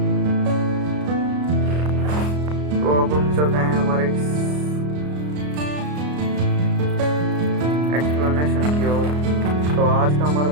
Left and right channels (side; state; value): left; late; 33 ms